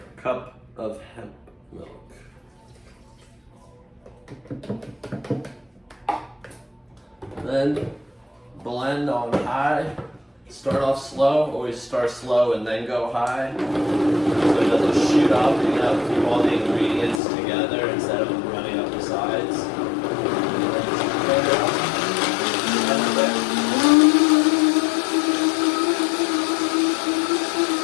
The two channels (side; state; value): right; drops out; at 17.2 s